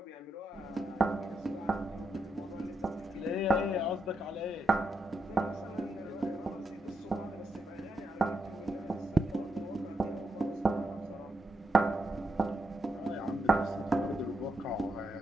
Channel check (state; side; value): normal; both; correlation 0.83